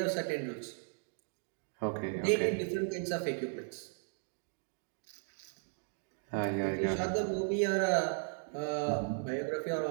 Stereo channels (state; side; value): silent; left; 54 dB below the other